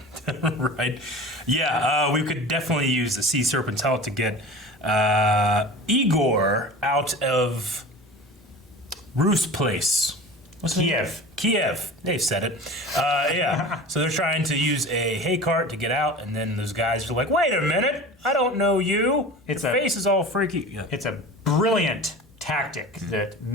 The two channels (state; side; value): normal; both; correlation 0.36